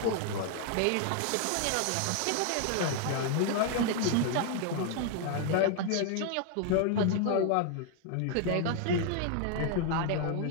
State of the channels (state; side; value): different; both; correlation 0.00